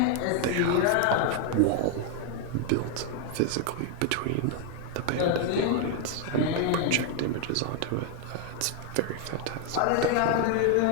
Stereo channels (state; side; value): different; both; correlation 0.00